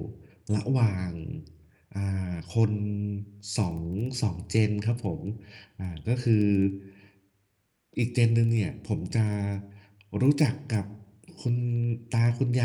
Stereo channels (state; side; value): identical; both; correlation 1.00